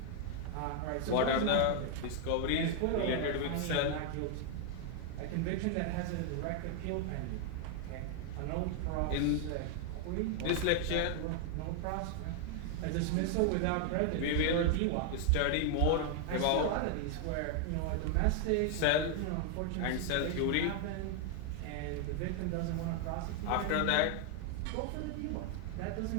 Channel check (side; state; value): both; different; correlation 0.00